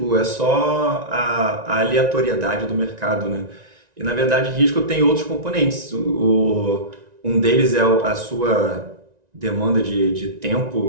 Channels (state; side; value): late; left; 1.9 ms